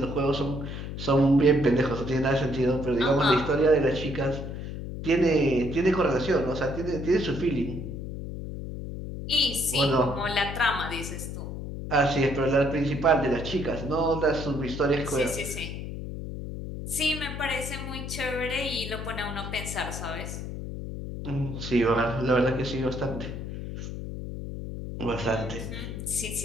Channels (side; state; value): left; noise; hum, 7 dB below the sound